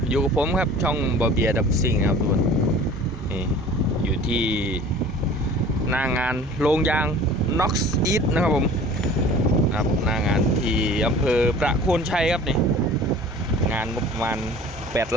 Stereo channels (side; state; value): both; normal; correlation 0.45